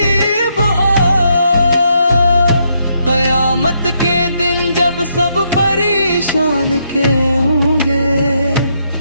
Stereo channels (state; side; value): inverted; both; correlation -0.76